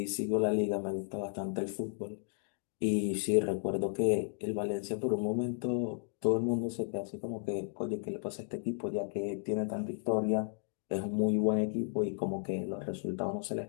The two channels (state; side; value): silent; right; digital silence